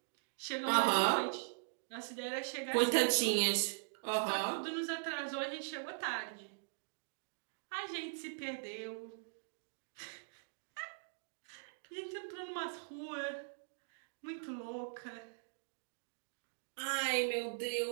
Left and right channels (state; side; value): silent; left; digital silence